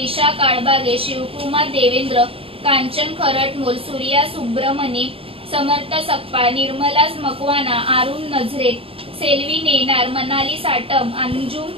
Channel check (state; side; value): late; left; 0.27 ms